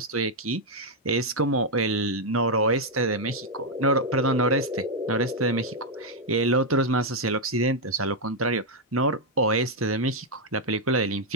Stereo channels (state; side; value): normal; both; correlation 0.00